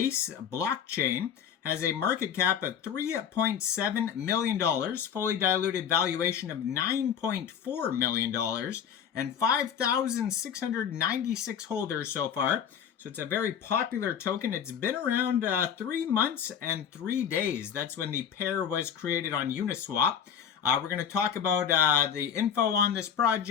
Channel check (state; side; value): quieter; right; 8.2 dB